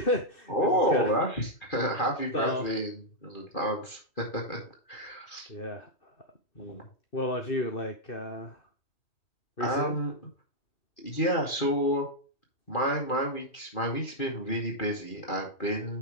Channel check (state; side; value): late; right; 2.4 ms